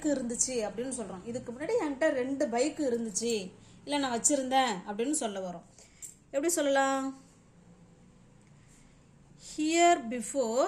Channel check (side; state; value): both; identical; correlation 1.00